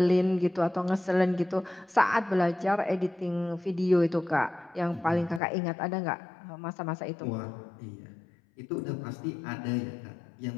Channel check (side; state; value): right; drops out; at 5.4 s